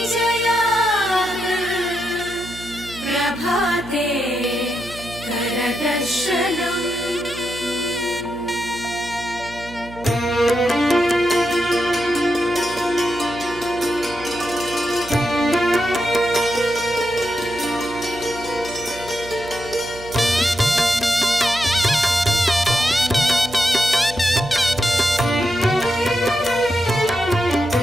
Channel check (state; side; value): noise; right; hum, 16 dB below the sound